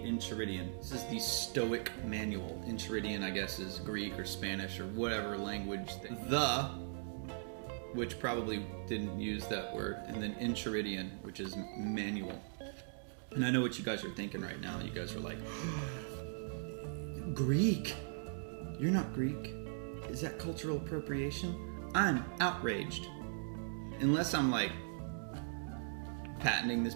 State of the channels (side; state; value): left; silent; digital silence